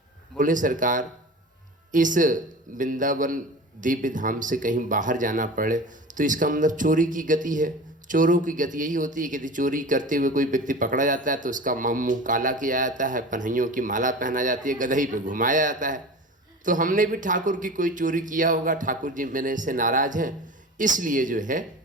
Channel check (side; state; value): both; normal; correlation 0.35